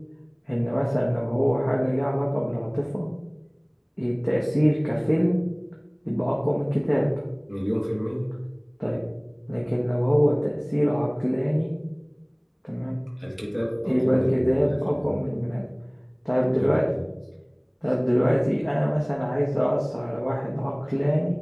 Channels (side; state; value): both; identical; correlation 1.00